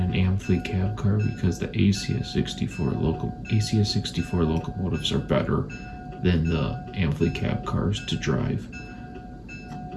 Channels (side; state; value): both; identical; correlation 1.00